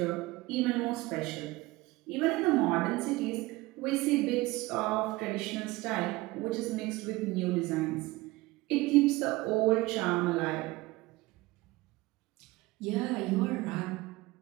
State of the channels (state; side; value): quieter; left; 20.4 dB